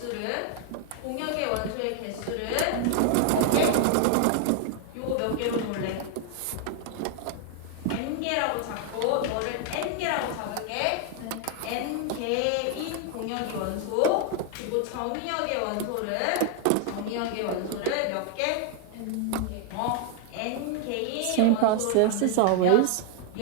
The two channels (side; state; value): both; different; correlation 0.00